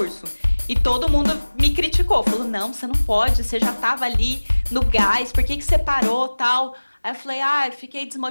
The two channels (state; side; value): inverted; both; correlation -1.00